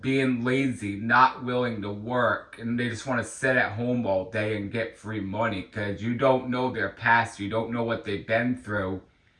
being lazy, not willing to work, and they just want to sit at home all day and get free money, because you don't know their past, you don't know what they've been through,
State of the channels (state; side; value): identical; both; correlation 1.00